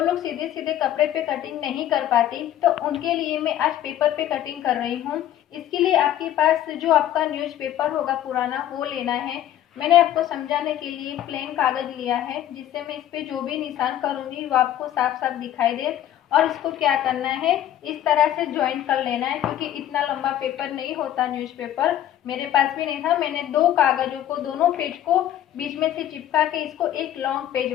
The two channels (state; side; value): quieter; right; 12.0 dB